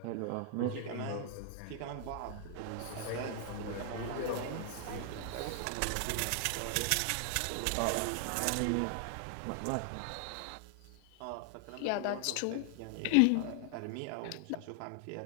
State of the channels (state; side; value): different; both; correlation 0.00